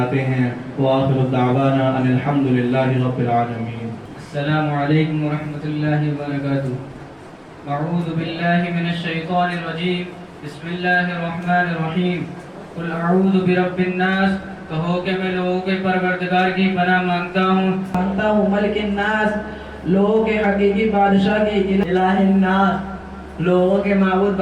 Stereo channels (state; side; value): identical; both; correlation 1.00